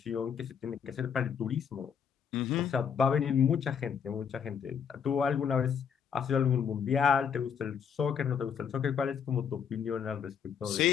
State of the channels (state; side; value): quieter; right; 7.3 dB